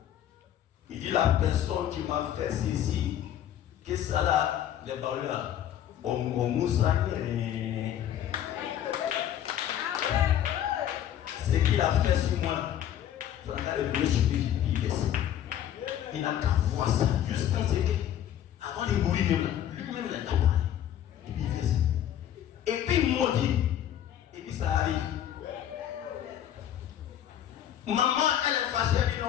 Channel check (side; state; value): right; quieter; 10.8 dB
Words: Il dit la personne qui m'a fait ceci, que ça là, les balles là, on moussa. Ce qu'il a fait sur moi, ça n'a le mieux sur lui, il n'a qu'à voir ça, juste penser que, avant de mourir, lui-même il n'a pas parlé. Et puis il fait ça. Et puis il m'a dit, et puis ça arrive. Maman, elle est fâchée, elle dit